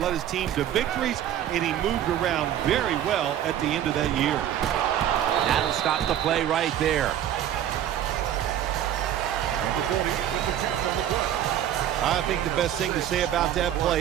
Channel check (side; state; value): left; quieter; 11.0 dB